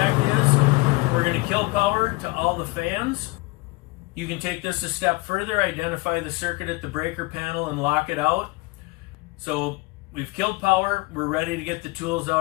is. We're going to kill power to all the fans. You can take this a step further, identify the circuit at the breaker panel and lock it out. So we've killed power, we're ready to get the tools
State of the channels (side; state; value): right; quieter; 24.1 dB